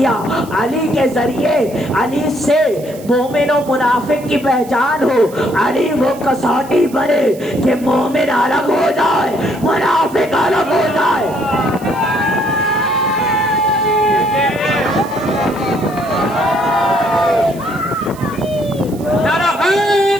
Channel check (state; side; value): noise; right; hiss, 21 dB below the sound